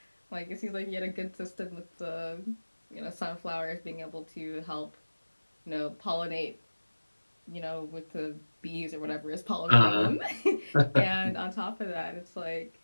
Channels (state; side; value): inverted; both; correlation -1.00